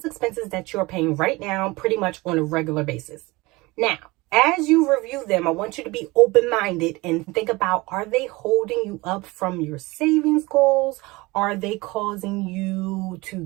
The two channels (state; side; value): quieter; left; 22.6 dB